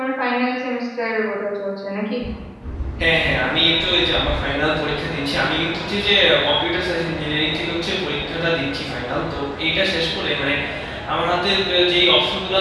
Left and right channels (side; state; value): both; identical; correlation 1.00